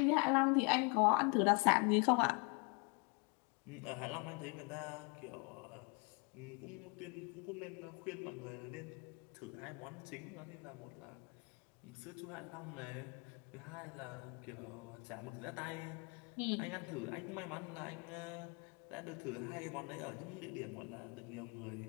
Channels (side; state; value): right; quieter; 32.8 dB